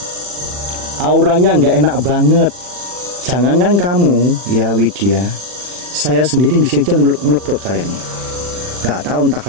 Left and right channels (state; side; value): late; left; 40 ms